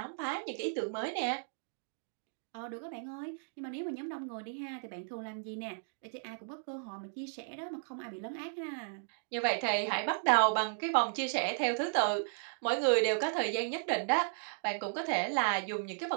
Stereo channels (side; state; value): left; silent; digital silence